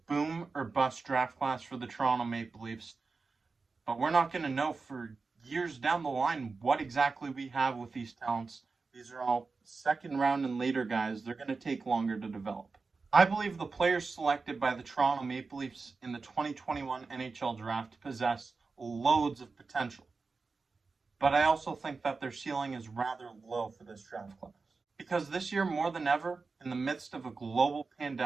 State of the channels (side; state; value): left; quieter; 4.3 dB